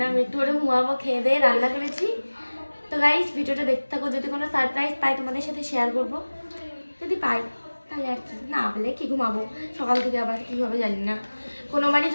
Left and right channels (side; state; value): both; inverted; correlation -1.00